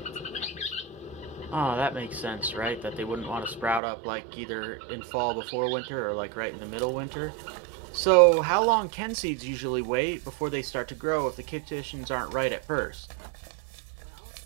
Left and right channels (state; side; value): drops out; left; at 3.8 s